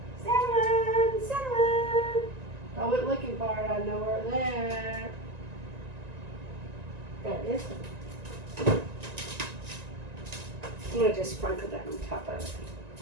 Cinnamon, cinnamon. I went looking for it. I know where it's at. Got this one. I'm going to just sprinkle that on top of it.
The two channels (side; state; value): left; late; 1.9 ms